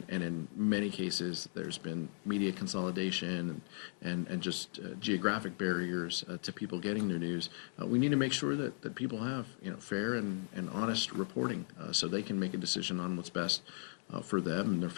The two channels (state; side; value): silent; right; 53 dB below the other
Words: in many cases, there's been media consolidation and just geographic barriers to people getting their news. We need to make sure that people have, fair and honest reporting so they can make a decision on what's best for them and their